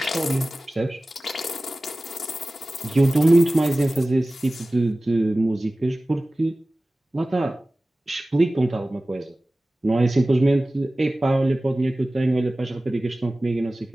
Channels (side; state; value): both; normal; correlation 0.97